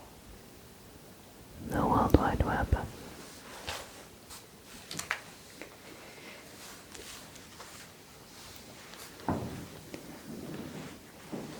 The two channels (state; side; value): identical; both; correlation 1.00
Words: the World Wide Web.